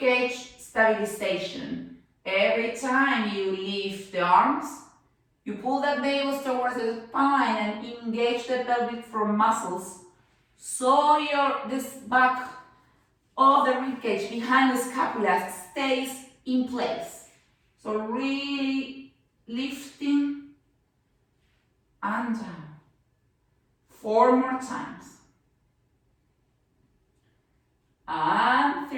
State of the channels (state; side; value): identical; both; correlation 1.00